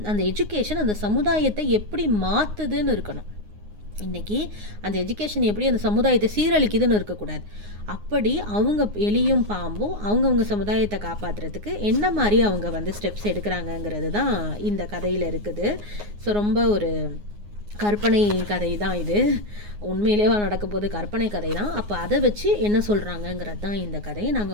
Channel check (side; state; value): left; late; 9.6 ms